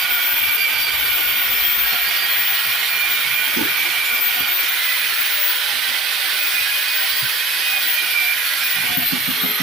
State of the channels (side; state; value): both; normal; correlation 0.50